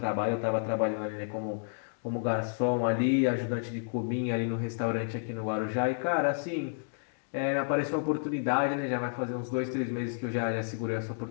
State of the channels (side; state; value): right; silent; digital silence